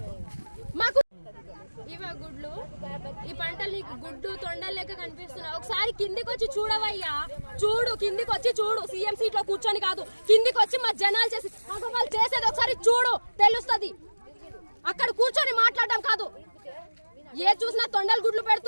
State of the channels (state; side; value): inverted; both; correlation -1.00